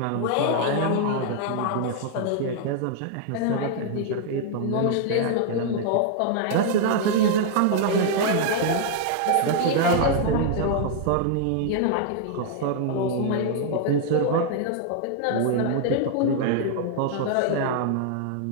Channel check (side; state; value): both; different; correlation 0.00